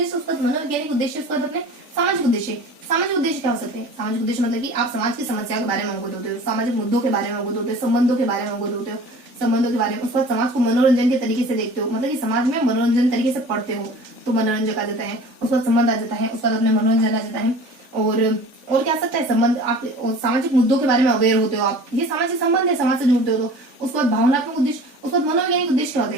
उसका मनोवैज्ञानिक उद्देश्य, उसका अपने सामाजिक उद्देश्य। सामाजिक उद्देश्य क्या हो सकते हैं, सामाजिक उद्देश्य मतलब कि आप समाज की समस्याओं के बारे में अवगत होते हो, सामाजिक मुद्दों के बारे में अवगत होते हो, संबंधों के बारे में अवगत होते हो, संबंधों के बारे में। उसके बाद समाज को मनोरंजन के तरीके से देखते हो, मतलब कि समाज में मनोरंजन तरीके से पढ़ते हो तो मनोरंजन आ जाता है। उसके बाद संबंध आ जाता है, उसके बाद अपने मनोरंजन आ जाता है। और क्या आ सकता है संबंध, आप सामाजिक मुद्दों के बारे में अवेयर होते हो, आप ये सामाजिक संबंध है, समाज से जुड़ते हो तो। उसके बाद भावनात्मक उद्देश्य, उसके बाद मनोवैज्ञानिक उद्देश्य क्या होते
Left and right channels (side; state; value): left; late; 3.4 ms